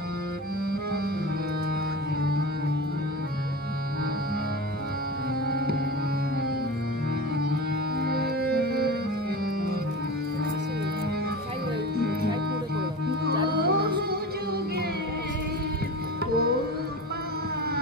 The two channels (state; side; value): normal; both; correlation 0.29